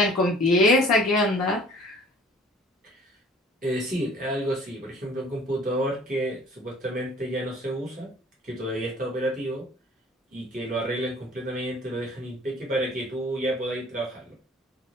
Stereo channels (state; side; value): normal; both; correlation 0.51